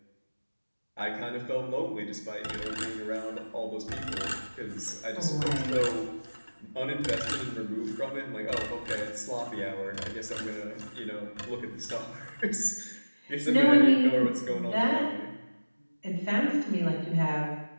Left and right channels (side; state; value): both; inverted; correlation -1.00